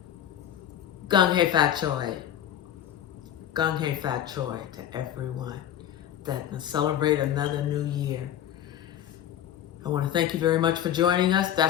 Gung Hei Fat Choi. Gung Hei Fat Choi to everyone that celebrate another new year. I want to thank you very much for joining us.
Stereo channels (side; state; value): right; quieter; 10.9 dB